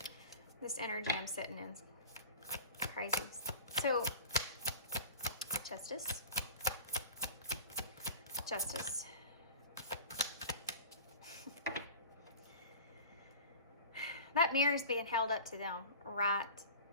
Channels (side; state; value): both; inverted; correlation -0.37